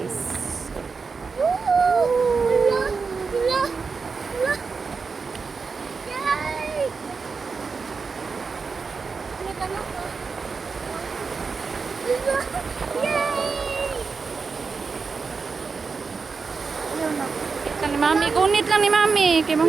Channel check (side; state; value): left; quieter; 4.9 dB